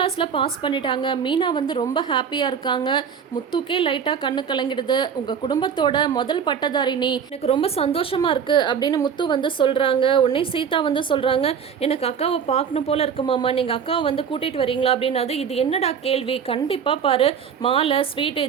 பாஸ் பண்ணிட்டாங்க. மீனா வந்து ரொம்ப ஹாப்பியாக இருக்காங்க. முத்துக்கே லைட்டாக கண்ணு கலங்கிடுது. உங்கள் குடும்பத்தோட முதல் பட்டதாரி நீ, எனக்கு ரொம்ப சந்தோஷமாக இருக்குது அப்படின்னு முத்து வந்து சொல்கிறாங்க. உடனே சீதா வந்து சொல்கிறாங்க, எனக்கு அக்காவை பார்க்கணும் போல் இருக்குமாம்மா, நீங்கள் அக்காவை வந்து கூட்டிகிட்டு வரீங்களா அப்படின்னாது. இது என்னடா கேள்வி, கண்டிப்பாக பாரு, மாலை ஸ்வீட்டு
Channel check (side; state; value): left; quieter; 7.3 dB